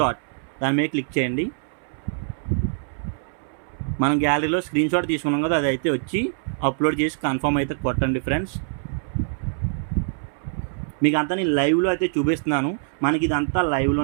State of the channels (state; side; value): silent; left; 61 dB below the other